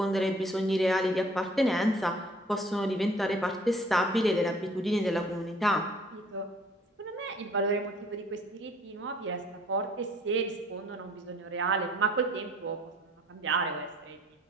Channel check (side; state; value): both; normal; correlation 0.56